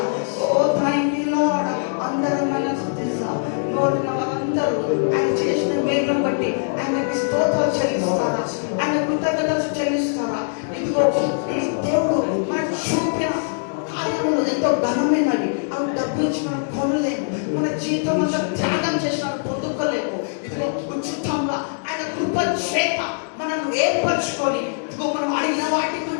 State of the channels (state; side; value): silent; right; digital silence